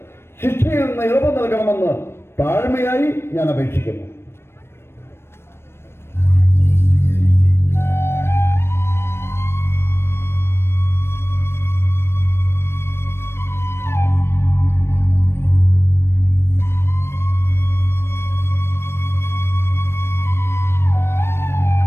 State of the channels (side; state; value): right; late; 0.12 ms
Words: ശിക്ഷയിൽ നിന്ന് ഇളവ് നൽകണമെന്ന് താഴ്മയായി ഞാൻ അപേക്ഷിക്കുന്നു.